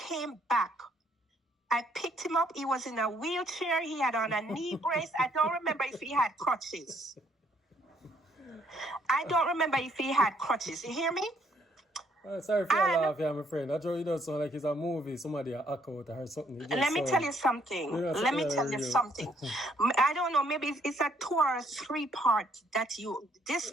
back I picked him up. He was in a wheelchair. He had on a knee brace. I don't remember if he had crutches. I don't remember if he had crutches. You hear me? Sorry for your laugh, yeah, my friend. That really does sound like it's a movie. Somebody a act out or something. Let me tell you something. Let me tell you something. I don't know. Maybe it's a 2 or 3 part that this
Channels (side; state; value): both; normal; correlation 0.68